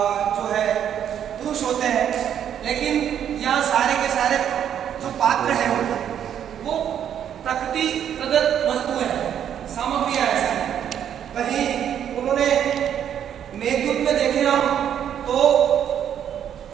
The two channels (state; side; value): quieter; left; 9.4 dB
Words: जो है पुरुष होते हैं, लेकिन यहाँ सारे के सारे जो पात्र हैं वो प्रकृति प्रदत्त वस्तुएं हैं, सामग्रियां हैं। वहीं उन्होंने मेघदूत में देखे हम तो